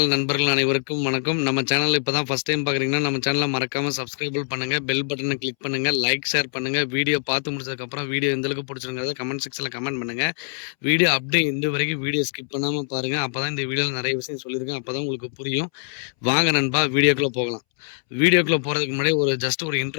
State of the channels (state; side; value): silent; right; 63 dB below the other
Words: நண்பர்கள் அனைவருக்கும் வணக்கம். நம்ம சேனல் இப்போ தான் ஃபஸ்ட் டைம் பார்க்குறீங்கன்னா, நம்ம சேனலை மறக்காமல் சப்ஸ்கிரைபிள் பண்ணுங்கள், பெல் பட்டனை கிளிக் பண்ணுங்கள், லைக் ஷேர் பண்ணுங்கள். வீடியோ பார்த்து முடிச்சதுக்கப்புறம் வீடியோ எந்த அளவுக்கு பிடிச்சிருங்கிறத கமெண்ட் செக்ஷனில் கமெண்ட் பண்ணுங்கள். வீடியோ அப்படியே இந்த வரைக்கும் வீடியோ ஸ்கிப் பண்ணாமல் பாருங்கள். அப்போ தான் இந்த வீடியோவில் நிறைய விஷயம் சொல்லியிருக்கேன். அப்போ தான் உங்களுக்கு புரியும். வாங்க நண்பா, வீடியோக்குள்ளே போகலாம். வீடியோக்குள்ளே போகிறதுக்கு முன்னாடி ஜஸ்ட் ஒரு